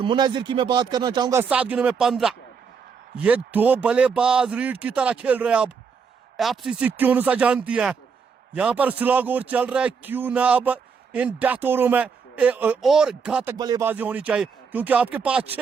मुनाजिर की मैं बात करना चाहूंगा, 7 गेंदों में 15। ये 2 बल्लेबाज रीड की तरह खेल रहे हैं। अब एफसीसी क्यों अनुसार जानती है, यहां पर स्लॉग ओवर चल रहा है, क्यों ना अब इन डेथ ओवरों में और घातक बल्लेबाजी होनी चाहिए, क्योंकि आपके पास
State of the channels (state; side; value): quieter; left; 5.9 dB